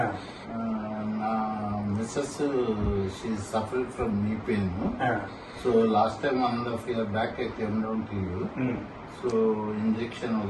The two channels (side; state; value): both; identical; correlation 1.00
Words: నా missus she suffered from knee pain. So last time 1.5 years back I came down to you. So injection